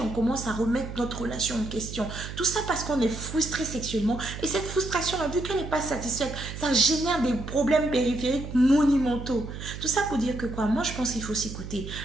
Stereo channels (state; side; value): noise; right; hum, 9 dB below the sound